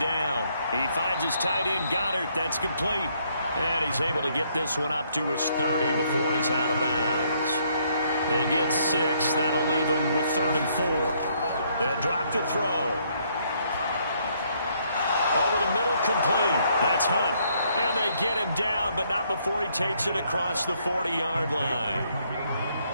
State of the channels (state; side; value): inverted; both; correlation -0.69